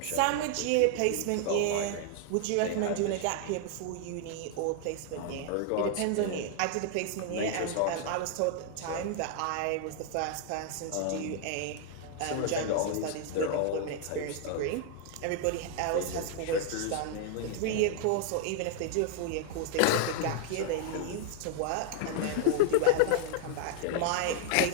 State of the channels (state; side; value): different; both; correlation 0.00